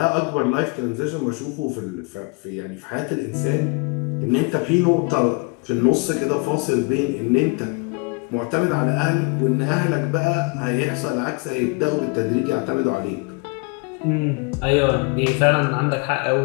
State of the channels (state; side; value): quieter; right; 29.7 dB